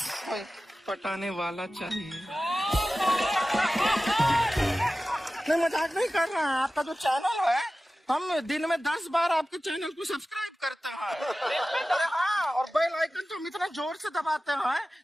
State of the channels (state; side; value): normal; both; correlation 0.95